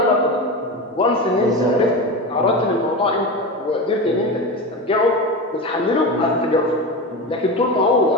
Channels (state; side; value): normal; both; correlation 0.23